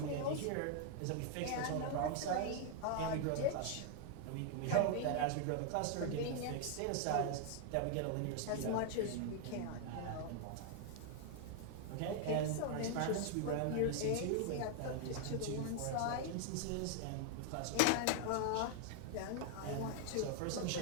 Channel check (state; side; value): different; both; correlation 0.00